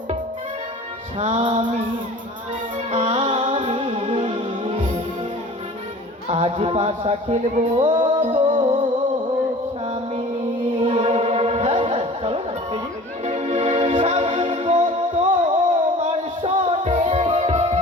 স্বামী আমি, আজ পাশা খেলবো স্বামী। হ্যাঁ হ্যাঁ চলো না খেলি। স্বামী গো তোমার শোনে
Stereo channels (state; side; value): normal; both; correlation 0.44